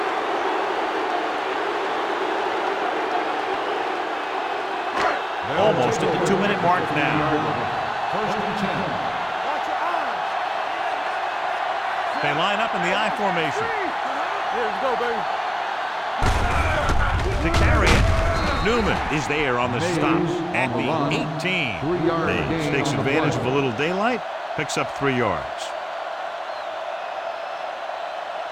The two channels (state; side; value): identical; both; correlation 1.00